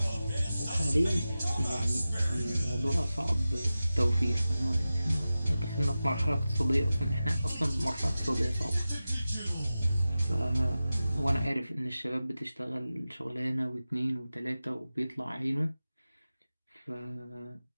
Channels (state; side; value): inverted; both; correlation -0.94